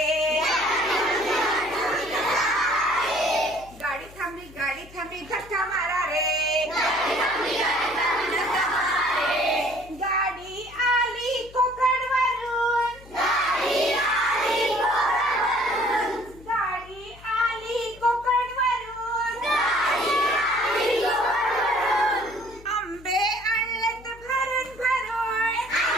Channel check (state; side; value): noise; left; hum, 21 dB below the sound